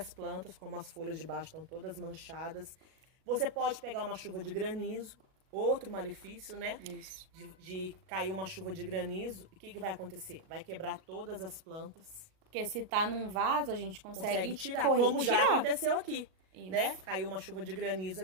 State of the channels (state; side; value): late; left; 37 ms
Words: plantas, como as folhas de baixo estão todas manchadas. Você pode pegar uma chuva de granizo, outro malefício, né? Isso. De cair uma chuva de granizo, e o que vai acontecer? Vai quebrar todas as plantas. Porque se tá num vaso, a gente consegue tirar, como já aconteceu aqui. Isso. Né? Caiu uma chuva de granizo